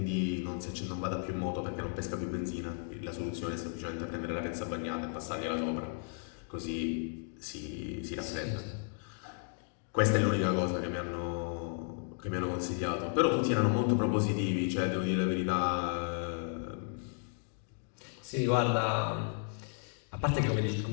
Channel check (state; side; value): silent; right; 55 dB below the other